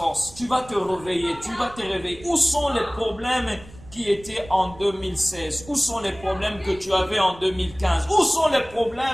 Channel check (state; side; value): noise; right; rumble, 20 dB below the sound